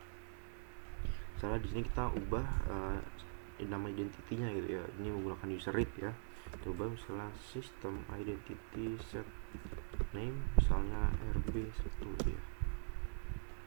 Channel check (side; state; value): left; silent; digital silence